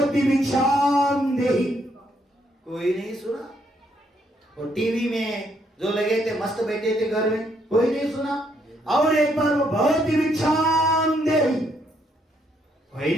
भिक्षाम देहि। कोई नहीं सुना। और टीवी में जो लगे थे मस्त बैठे थे घर में, कोई नहीं सुना। और एक बार वो भवती भिक्षाम देहि। भाई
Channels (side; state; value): both; normal; correlation 0.72